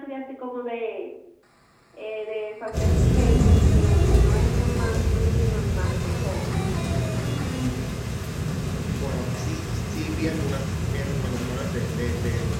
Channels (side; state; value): both; identical; correlation 1.00